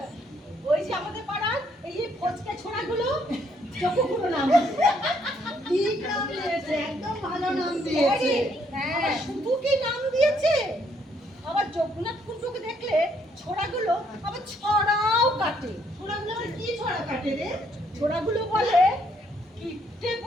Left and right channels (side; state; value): both; normal; correlation 0.70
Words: ওই যে আমাদের পাড়ার এই যে ফচকে ছোড়াগুলো চক্ষুগুলো নাম। ঠিক নাম দিয়েছে, একদম ভালো নাম দিয়েছে। হ্যাঁ, শুধু কি নাম দিয়েছে, আবার জগন্নাথ কুণ্ডুকে দেখলে ছোড়াগুলো আবার ছড়াও কাটে। ছোড়াগুলো আবার কি ছড়া কাটে রে? ছোড়াগুলো বলে কিট্টে